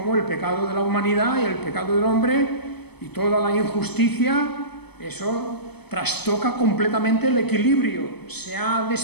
el pecado de la humanidad y el pecado del hombre y toda la injusticia, eso trastoca completamente el equilibrio, se ha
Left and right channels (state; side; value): late; right; 0.98 ms